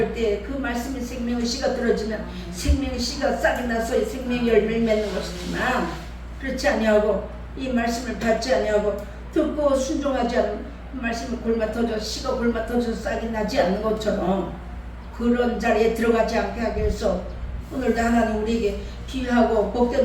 때 그 말씀이 생명의 씨가 들어지면 생명의 씨가 싹이 나서 생명의 열매를 맺는 것이지만 그렇지 아니하고 이 말씀을 받지 아니하고 듣고 순종하지 않는 말씀을 골마터져 씨가 골마터져 싹이 나지 않는 것처럼 그런 자리에 들어가지 않게 하기 위해서 오늘도 하나님 우리에게 귀하고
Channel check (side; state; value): both; identical; correlation 1.00